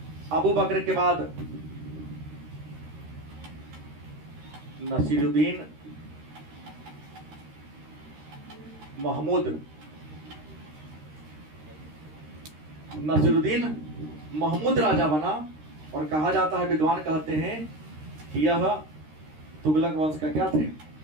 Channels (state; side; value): late; left; 13 ms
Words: अबू बकर के बाद नसीरुद्दीन महमूद राजा बना। और कहा जाता है, विद्वान कहते हैं कि यह तुगलक वंश का क्या थे?